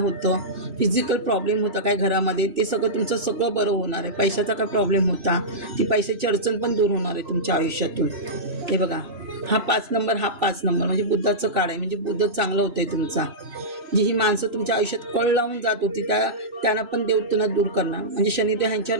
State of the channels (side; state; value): left; late; 3.0 ms